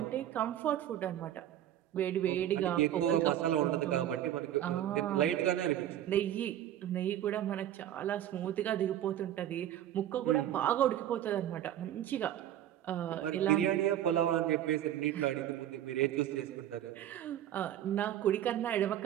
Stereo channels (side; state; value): left; quieter; 11.6 dB